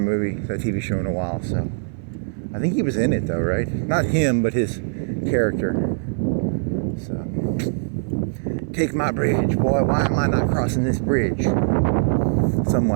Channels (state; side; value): silent; left; 57 dB below the other